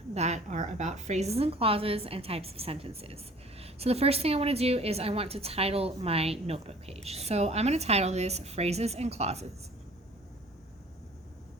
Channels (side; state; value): both; normal; correlation 0.50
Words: that are about phrases and clauses and types of sentences. So the first thing I want to do is I want to title my notebook page. So I'm going to title this Phrases and Clauses.